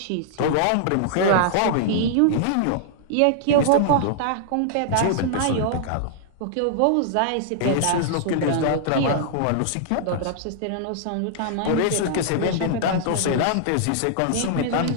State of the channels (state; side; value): different; both; correlation -0.01